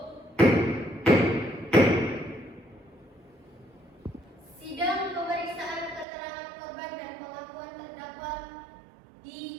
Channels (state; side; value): drops out; left; at 6.1 s